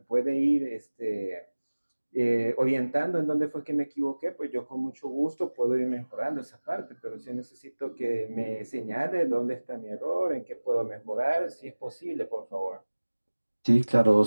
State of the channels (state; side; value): inverted; both; correlation -1.00